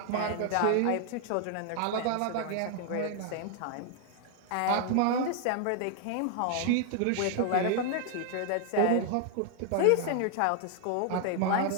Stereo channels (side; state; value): both; different; correlation 0.00